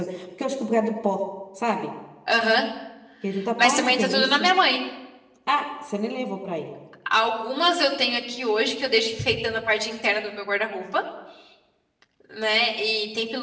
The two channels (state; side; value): identical; both; correlation 1.00